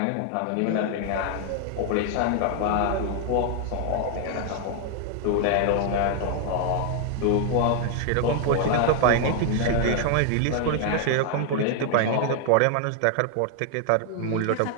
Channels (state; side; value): different; both; correlation 0.00